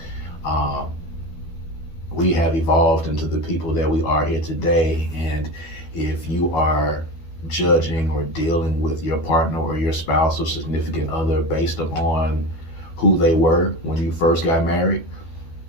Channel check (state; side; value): late; right; 12 ms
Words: We have evolved into the people that we are here today, and if you are judging or dealing with your partner or your spouse or significant other based upon who they were when you first got married,